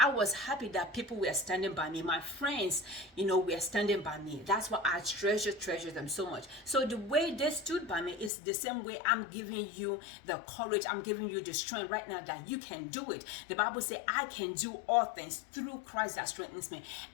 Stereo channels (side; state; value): right; drops out; at 8.3 s